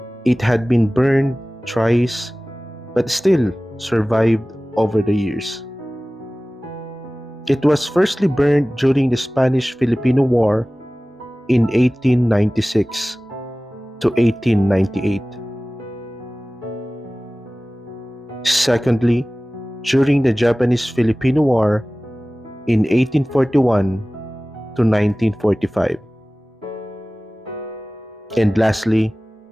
It had been burned thrice, but still survived over the years. It was firstly burned during the Spanish-Filipino War in 1896 to 1898. Secondly, during the Japanese-Filipino War in 1841 to 1945. And lastly,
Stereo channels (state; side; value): normal; both; correlation 0.98